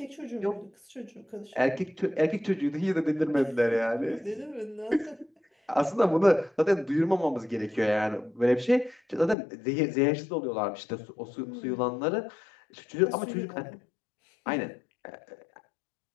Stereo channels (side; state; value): right; drops out; at 9.3 s